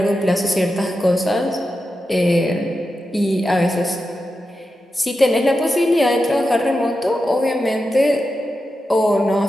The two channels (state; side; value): normal; both; correlation 0.90